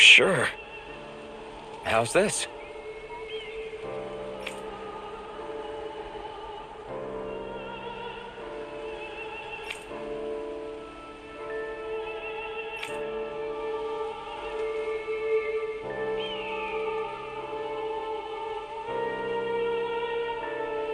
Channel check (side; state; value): both; identical; correlation 1.00